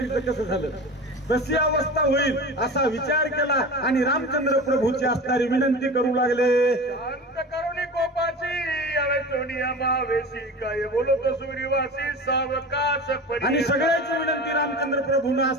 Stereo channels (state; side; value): normal; both; correlation 0.32